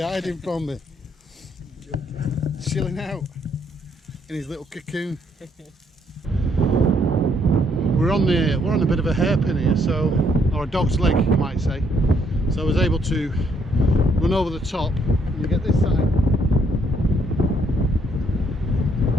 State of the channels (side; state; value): both; normal; correlation 0.70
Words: hiding from me. Chilling out in his little cocoon. We're on a bit of a hairpin here, or a dog's leg, you might say. So I was able to run over the top and get this side.